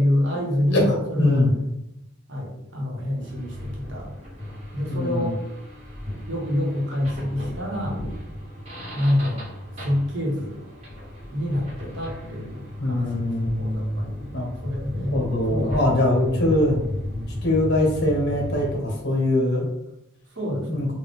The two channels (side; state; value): both; normal; correlation 0.68